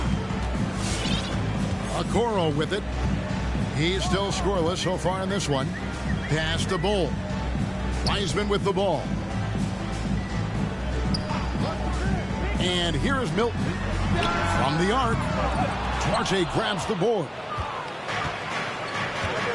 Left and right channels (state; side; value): identical; both; correlation 1.00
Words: Okoro with it. He's still scoreless so far in this one. Pass to Bull. Wiseman with the ball. And here is Milton from the arc. Duarte grabs the board.